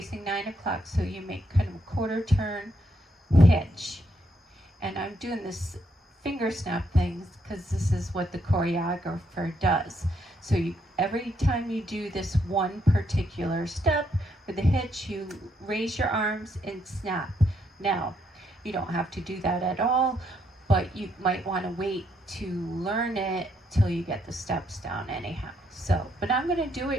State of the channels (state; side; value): normal; both; correlation 0.75